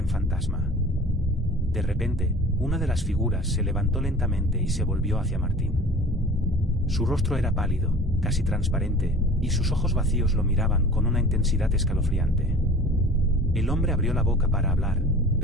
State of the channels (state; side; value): normal; both; correlation 0.43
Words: fantasma. De repente, una de las figuras se levantó lentamente y se volvió hacia Martín. Su rostro era pálido, casi transparente, y sus ojos vacíos lo miraban con una intensidad escalofriante. El hombre abrió la boca para hablar,